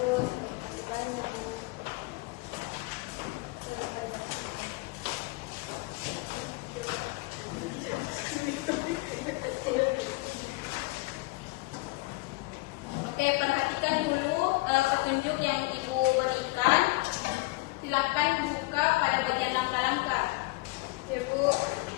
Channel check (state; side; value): quieter; right; 22.7 dB